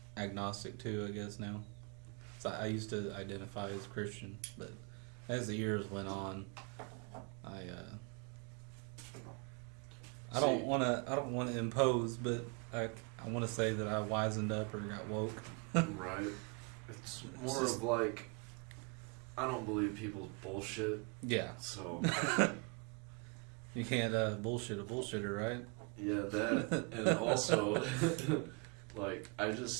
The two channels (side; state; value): left; quieter; 33.2 dB